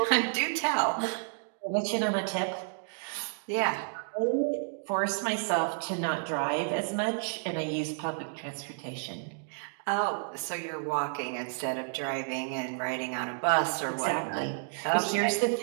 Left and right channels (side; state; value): left; silent; digital silence